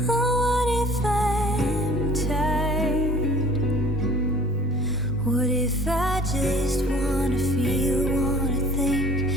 Oh, what if I'm tired? What if I just wanna feel, wanna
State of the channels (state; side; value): normal; both; correlation 0.49